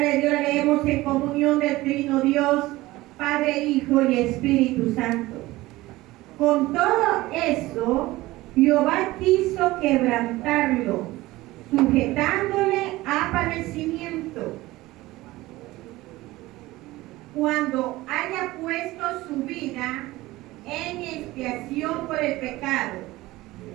Dios la leemos en comunión del Trino Dios, Padre, Hijo y Espíritu Santo. Con todo eso, Jehová quiso quebrantarlo, sujetándole a padecimiento. Cuando haya puesto su vida en expiación por el pecado,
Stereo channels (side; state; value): left; quieter; 18.6 dB